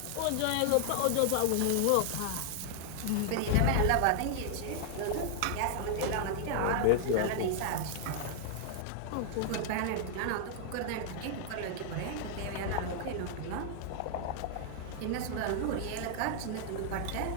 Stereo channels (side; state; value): both; different; correlation 0.00